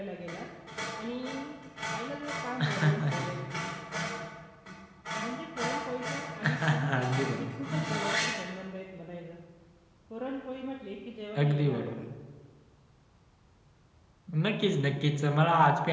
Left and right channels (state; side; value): identical; both; correlation 1.00